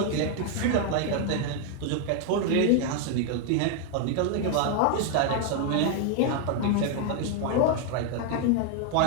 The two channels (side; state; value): both; different; correlation 0.00